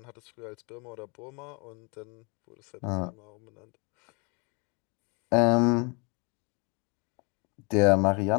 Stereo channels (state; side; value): quieter; right; 31.9 dB